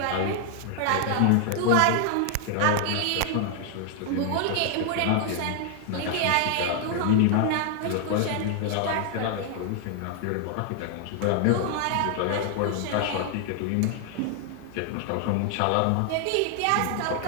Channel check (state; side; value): different; both; correlation 0.00